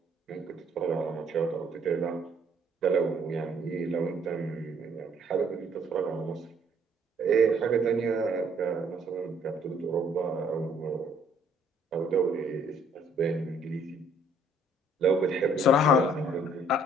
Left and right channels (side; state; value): both; normal; correlation 0.62